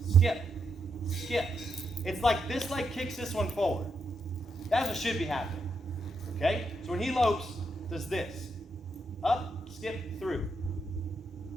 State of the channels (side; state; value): both; normal; correlation 0.81